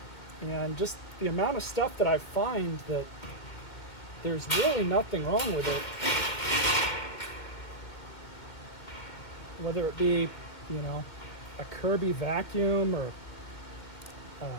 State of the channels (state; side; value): late; right; 2.2 ms